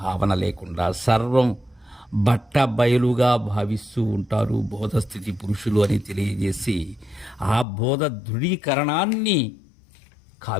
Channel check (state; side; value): drops out; right; at 7.7 s